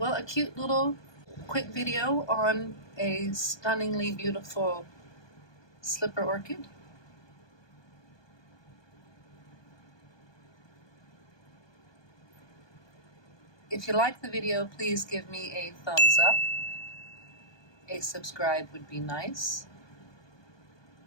a cute little quick video on a stunningly beautiful slipper orchid. If you like the video, please give me a thumbs up. A subscribe would be nice.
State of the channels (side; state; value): right; late; 1.2 ms